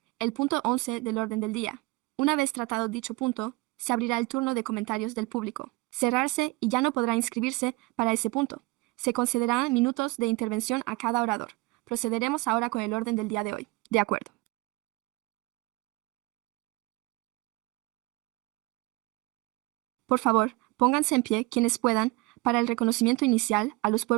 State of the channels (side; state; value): left; quieter; 22.9 dB